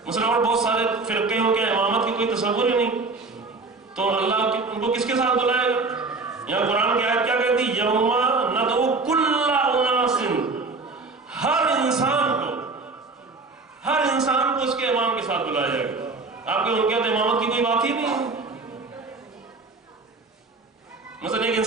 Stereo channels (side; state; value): left; quieter; 3.9 dB